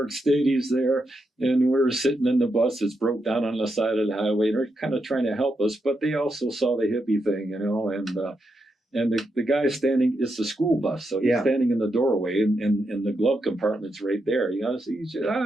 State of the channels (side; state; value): both; normal; correlation 0.83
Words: Stadies there, and we're sitting in the bus that's broke down on the side of the highway. They're kind of trying to help us, but they also saw the hippie thing, you know, And the guy standing, it's the school bus. So he's standing in the doorway and the glove compartment's right there. You know, so he's just,